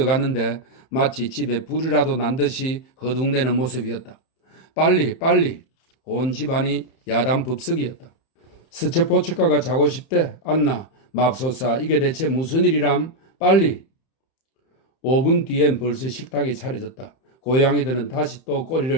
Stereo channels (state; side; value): late; right; 31 ms